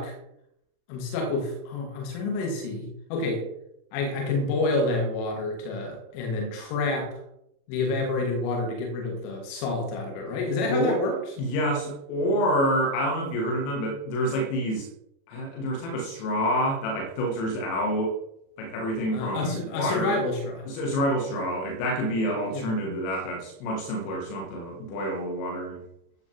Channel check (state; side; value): late; right; 36 ms